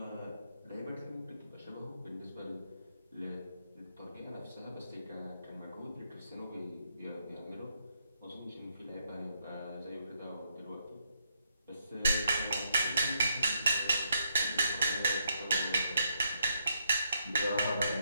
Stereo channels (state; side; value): inverted; both; correlation -0.76